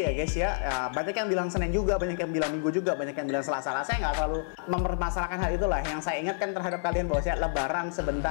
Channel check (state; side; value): silent; right; 59 dB below the other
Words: guys ya. Banyak yang bilang Senin juga, banyak yang bilang Minggu juga, banyak yang bilang Selasa. Saya nggak terlalu mempermasalahkan hal itulah. Yang saya ingatkan terhadap kalian bahwa Lebaran